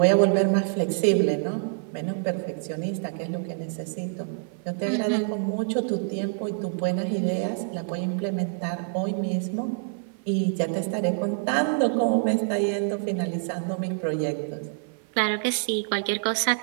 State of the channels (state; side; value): silent; left; 55 dB below the other